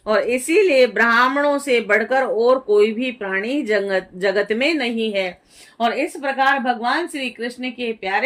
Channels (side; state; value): both; identical; correlation 1.00